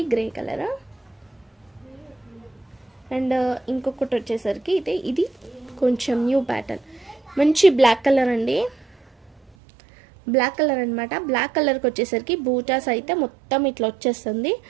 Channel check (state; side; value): drops out; left; at 9.5 s